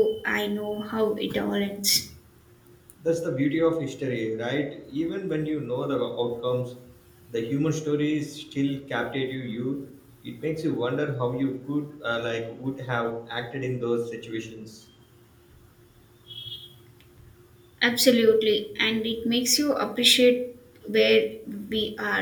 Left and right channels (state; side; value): identical; both; correlation 1.00